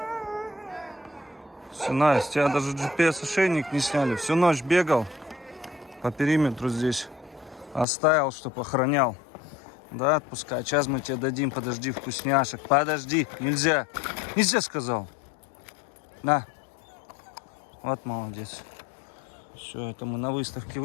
Синай, с тебя даже GPS-ошейник не сняли. Всю ночь бегал по периметру здесь. Оставил, чтоб охранял. Да, отпускай. Сейчас мы тебе дадим, подожди, вкусняшек. Подожди, нельзя. Нельзя, сказал. На. Вот молодец. Все, это мы на выставке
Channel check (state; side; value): drops out; right; at 7.9 s